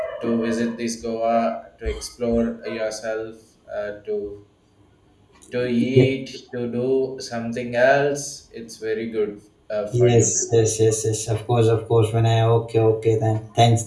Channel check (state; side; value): identical; both; correlation 1.00